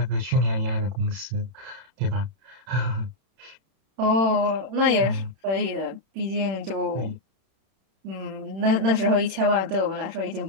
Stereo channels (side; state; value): left; late; 32 ms